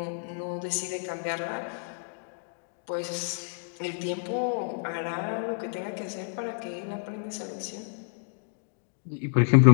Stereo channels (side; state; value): right; silent; digital silence